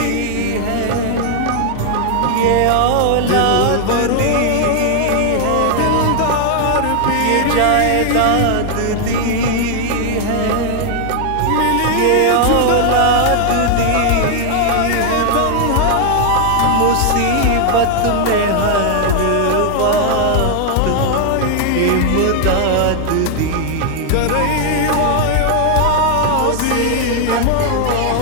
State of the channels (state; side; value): different; both; correlation 0.00